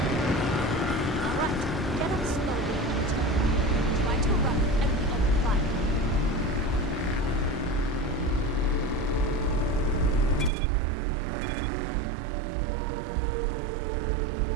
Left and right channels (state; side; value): drops out; left; at 10.5 s